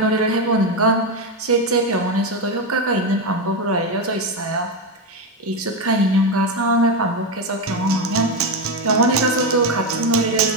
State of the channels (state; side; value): normal; both; correlation 0.11